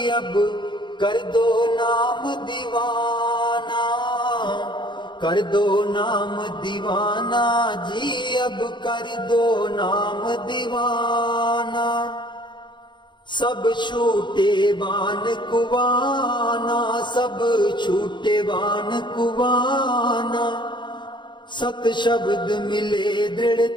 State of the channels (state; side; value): late; right; 0.22 ms